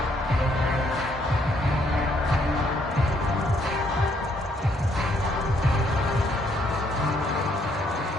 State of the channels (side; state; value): both; normal; correlation 0.70